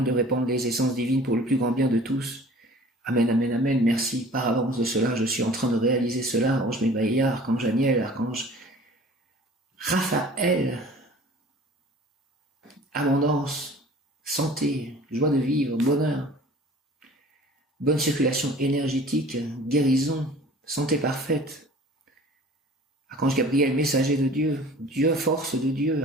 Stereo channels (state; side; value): normal; both; correlation 0.46